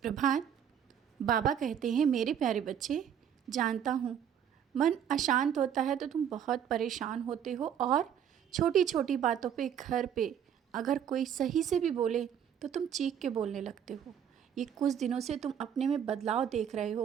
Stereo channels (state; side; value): quieter; left; 8.9 dB